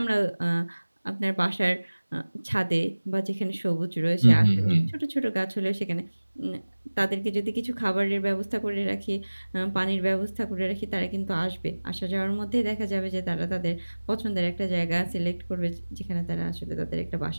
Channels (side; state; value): both; inverted; correlation -1.00